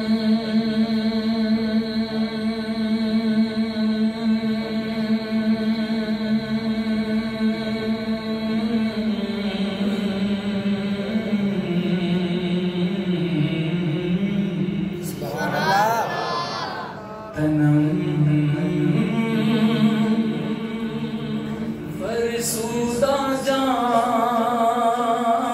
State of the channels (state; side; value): identical; both; correlation 1.00